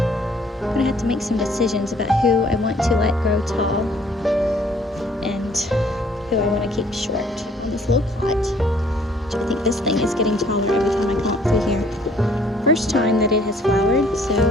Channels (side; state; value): both; normal; correlation 0.60